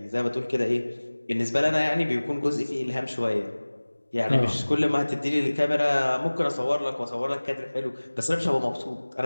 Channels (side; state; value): both; inverted; correlation -1.00